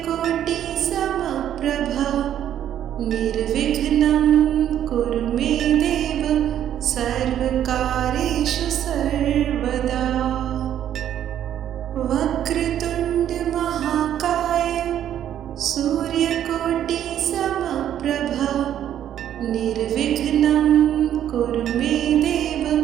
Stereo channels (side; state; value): left; quieter; 10.6 dB